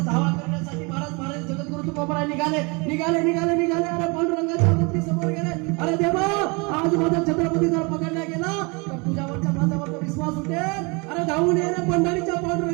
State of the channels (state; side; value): quieter; left; 29.4 dB